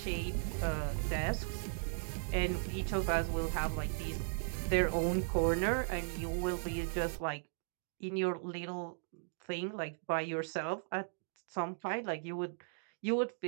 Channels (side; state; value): left; silent; digital silence